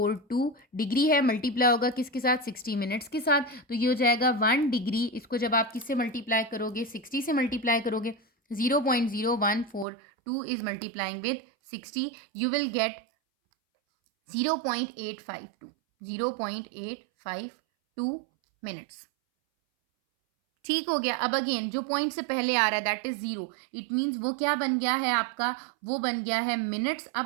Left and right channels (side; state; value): left; drops out; at 9.9 s